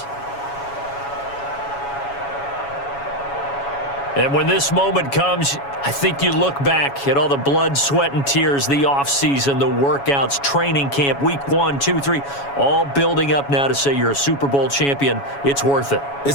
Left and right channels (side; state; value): right; late; 7.2 ms